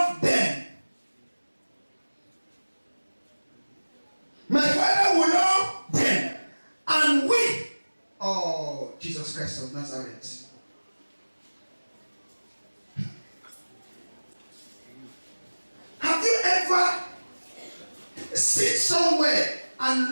them. My Father will love them. And we, oh, Jesus Christ of Nazareth. Have you ever sit somewhere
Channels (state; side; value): inverted; both; correlation -1.00